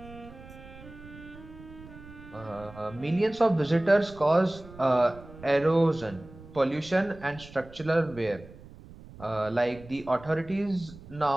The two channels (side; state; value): right; noise; rumble, 18 dB below the sound